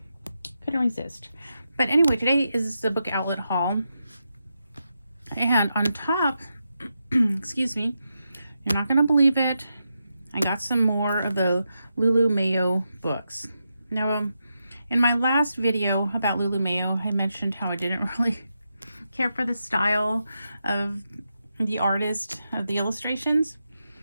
couldn't resist. But anyway, today is the book outlet haul. And on top, excuse me, you're not going to believe it, I got some more of the Lulu Mayo books. Now, in my last video about Lulu Mayo, I mentioned how I didn't really care for the style of the artist of the illustrations.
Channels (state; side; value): inverted; both; correlation -0.86